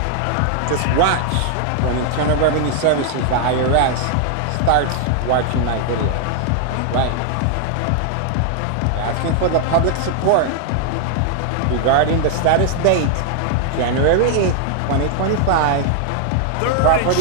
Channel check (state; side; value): different; both; correlation 0.00